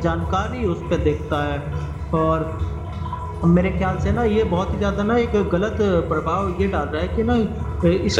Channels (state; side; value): identical; both; correlation 1.00